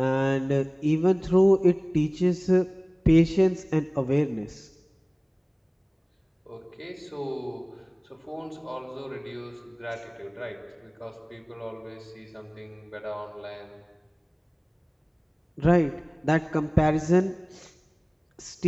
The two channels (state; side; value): identical; both; correlation 1.00